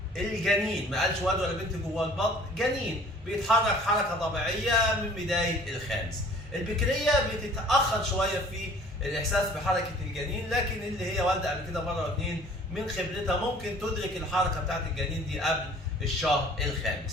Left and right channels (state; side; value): normal; both; correlation 0.51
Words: الجنين، ما قالش ولد ولا بنت جوه البطن، جنين بيتحرك حركه طبيعيه من بدايه الخامس. البكريه بتتاخر شويه في الاحساس بحركه الجنين، لكن اللي هي والده قبل كده مره واثنين من خبرتها ممكن تدرك الحركه بتاعت الجنين دي قبل الشهر